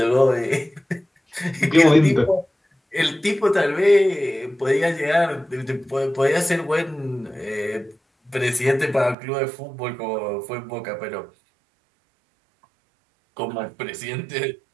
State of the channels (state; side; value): drops out; left; at 9.2 s